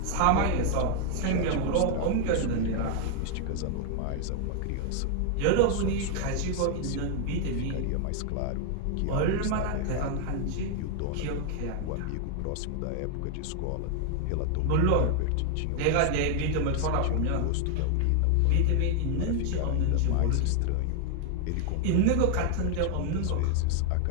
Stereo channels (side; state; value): both; different; correlation 0.01